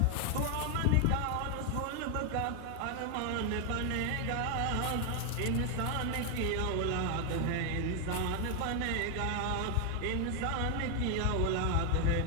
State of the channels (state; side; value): different; both; correlation 0.00